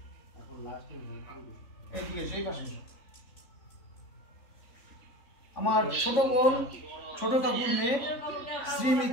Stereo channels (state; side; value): late; right; 3.5 ms